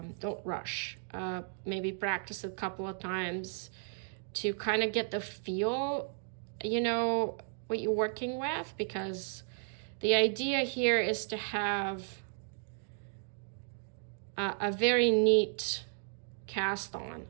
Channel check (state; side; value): silent; left; digital silence